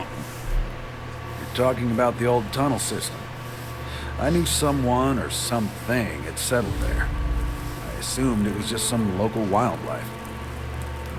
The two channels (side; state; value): both; identical; correlation 1.00